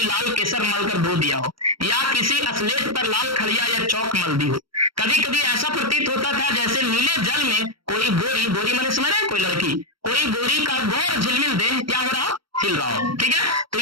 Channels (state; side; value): late; left; 0.74 ms